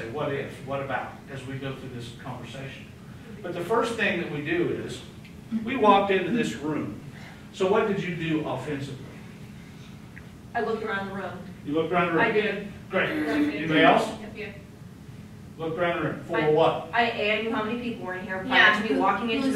what if, what about, as we go through this conversation. But the first thing that we do is, we walked into this room. So what did you do offensively? I looked around the room. You looked around the room? I did. Great. Anybody else? Yeah. Looked around the room. For what? I knew how many people were in here Yeah. prior to me walking into Who's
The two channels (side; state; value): both; identical; correlation 1.00